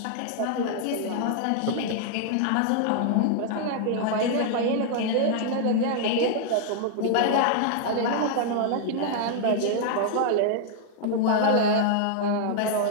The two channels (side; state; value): both; different; correlation 0.00